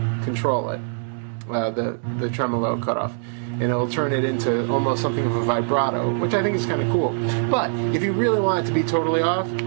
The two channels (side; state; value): left; silent; digital silence